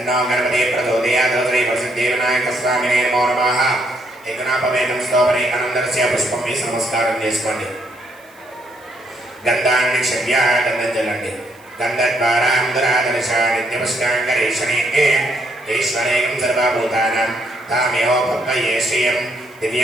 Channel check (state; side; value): noise; right; hiss, 29 dB below the sound